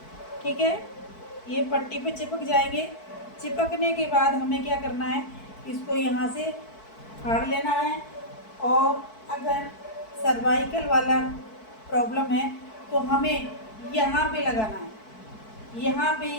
ठीक है, ये पट्टी पे चिपक जाएंगे। चिपकने के बाद हमें क्या करना है, इसको यहाँ से फाड़ लेना है। और अगर सर्वाइकल वाला प्रॉब्लम है तो हमें यहाँ पे लगाना है, यहाँ पे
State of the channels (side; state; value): right; late; 4.6 ms